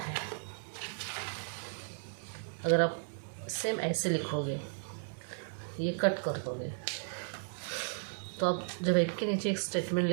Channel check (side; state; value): left; silent; digital silence